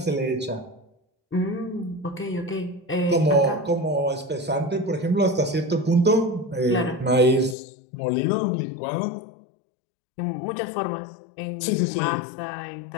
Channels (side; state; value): right; drops out; at 7.6 s